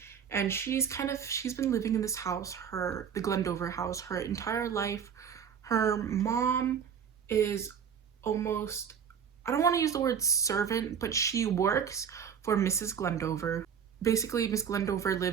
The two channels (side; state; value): left; quieter; 7.6 dB